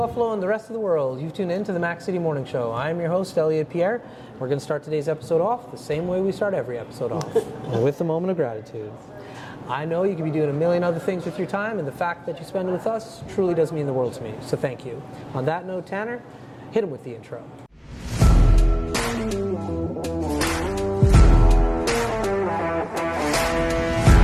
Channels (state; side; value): identical; both; correlation 1.00